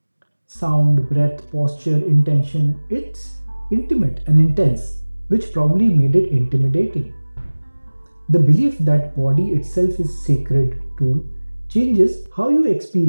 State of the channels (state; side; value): inverted; both; correlation -1.00